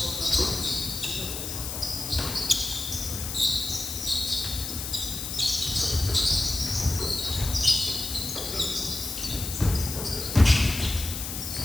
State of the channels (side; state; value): left; noise; hiss, 5 dB below the sound